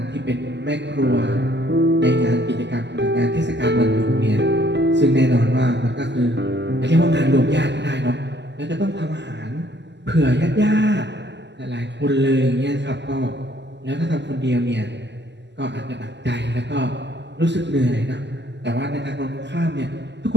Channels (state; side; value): late; left; 0.51 ms